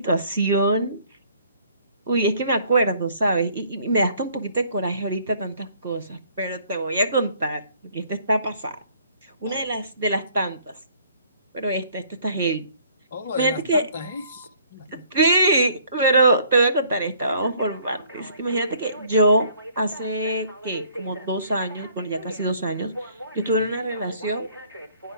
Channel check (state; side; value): inverted; both; correlation -0.59